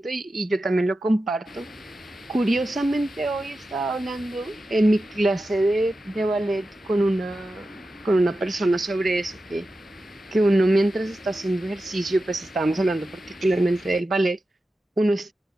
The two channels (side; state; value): both; normal; correlation 0.92